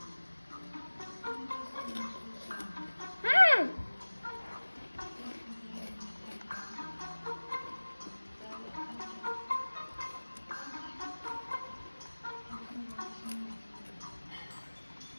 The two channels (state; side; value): inverted; both; correlation -1.00